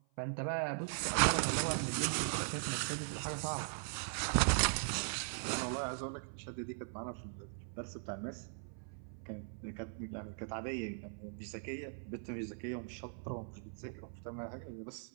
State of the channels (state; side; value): silent; left; 51 dB below the other